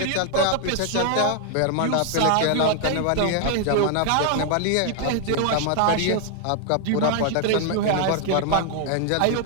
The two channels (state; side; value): different; both; correlation 0.00